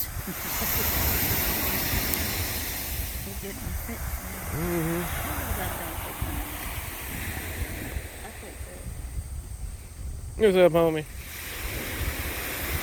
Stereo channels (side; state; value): both; identical; correlation 1.00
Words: They get them fixed. Mm-hmm. I fix it. What's up, homie?